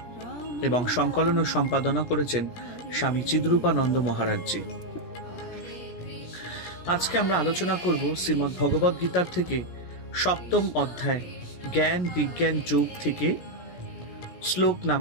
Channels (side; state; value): right; late; 17 ms